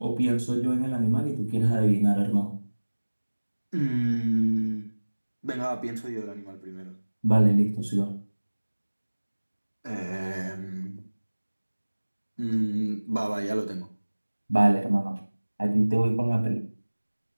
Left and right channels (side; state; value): both; inverted; correlation -1.00